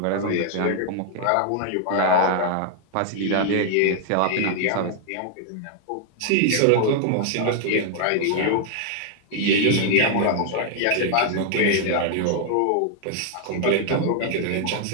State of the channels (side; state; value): both; different; correlation 0.00